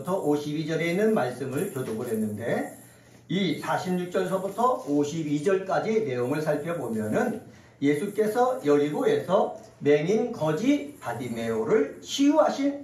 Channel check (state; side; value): identical; both; correlation 1.00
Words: 52절에 있는 말씀을 교독을 했는데, 이 46절서부터 52절까지 내용을 살펴보면은 예수께서 여리고에서 맹인 거지 바디메오를